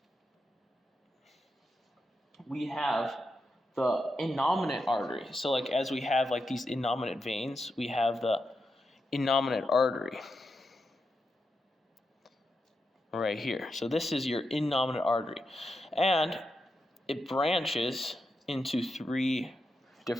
We have the innominate artery. So like as we have like these innominate veins, we have the innominate artery right here. So this is your innominate artery. And it branches into three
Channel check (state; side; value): normal; both; correlation 0.86